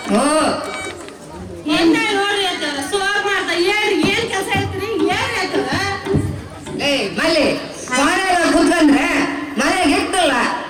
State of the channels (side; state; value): both; identical; correlation 1.00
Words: ಏನ್ ನೋಡ್ರಿ ಅತ್ತ ಸೋರ್ ಮಾಡ್ತಾ ಹೇಳ್ರಿ ಏನ್ ಕೆಲಸ ಐತ್ರಿ ಏನ್ ಆಯ್ತದ ಏ ಮಲ್ಲಿ ಮನೆಯಾಗ ಕುತ್ಕೊಂಡ್ರೆ ಮನೆಗೆ ಇಟ್ಟಲ್ಲ